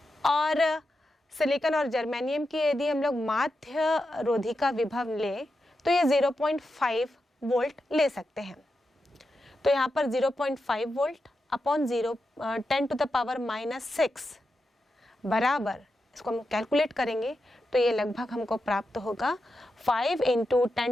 और सिलिकॉन और जर्मेनियम की यदि हम लोग माध्य रोधिका विभव लें तो ये 0.5 वोल्ट ले सकते हैं। तो यहाँ पर 0.5 वोल्ट अपॉन 10⁻⁻6 बराबर, इसको हम कैलकुलेट करेंगे तो ये लगभग हमको प्राप्त होगा 5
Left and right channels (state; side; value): normal; both; correlation 0.88